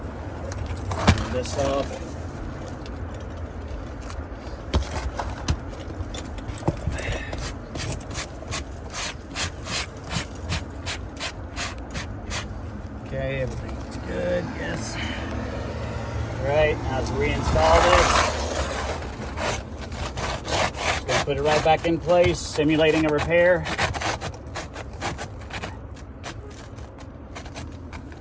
turn this off. Okay, everything's good, yes. All right, now let's reinstall this. Just gonna put it right back in place, simulating a repair.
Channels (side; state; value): both; identical; correlation 1.00